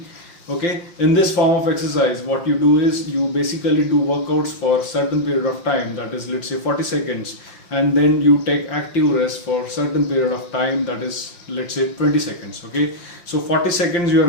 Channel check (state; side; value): late; right; 5.8 ms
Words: Okay, in this form of exercise, what you do is you basically do workouts for certain period of time, that is, let's say 40 seconds, and then you take active rest for certain period of time, that is, let's say 20 seconds. Okay, so 40 seconds you are